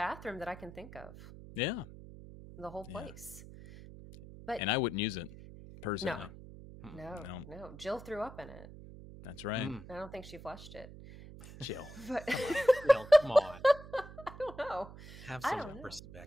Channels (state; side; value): noise; right; hum, 16 dB below the sound